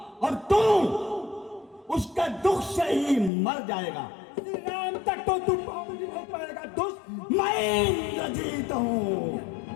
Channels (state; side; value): drops out; right; at 3.3 s